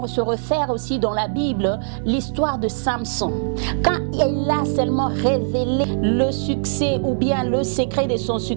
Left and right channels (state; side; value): silent; left; digital silence